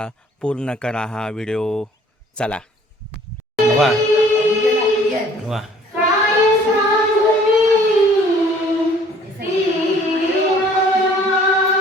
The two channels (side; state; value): both; normal; correlation 0.56